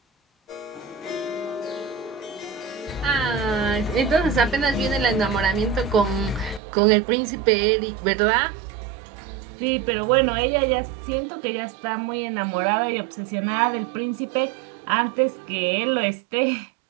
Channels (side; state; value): left; drops out; at 6.6 s